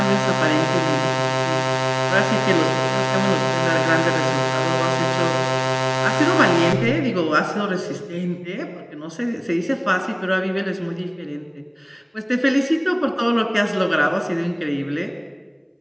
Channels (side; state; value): both; identical; correlation 1.00